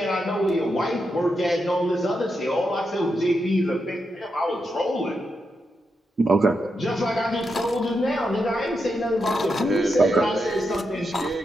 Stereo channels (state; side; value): normal; both; correlation 0.85